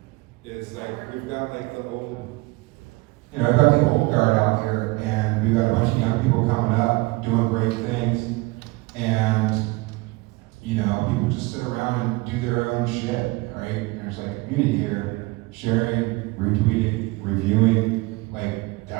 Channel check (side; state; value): left; quieter; 23.1 dB